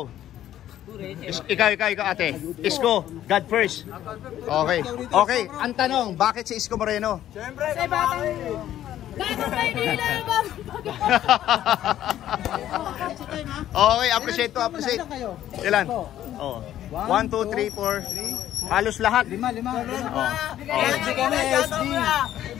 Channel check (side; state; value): right; quieter; 12.1 dB